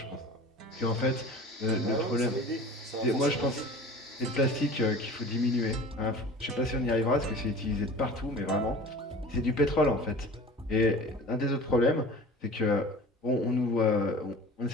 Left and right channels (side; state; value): both; normal; correlation 0.41